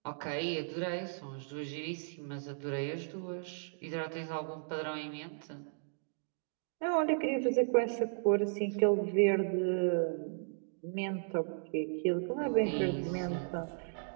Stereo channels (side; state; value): left; silent; digital silence